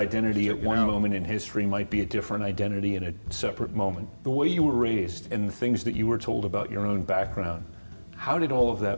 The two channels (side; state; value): both; inverted; correlation -1.00